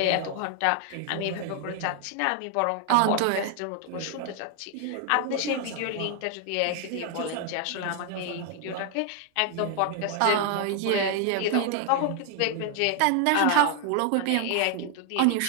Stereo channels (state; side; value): different; both; correlation 0.00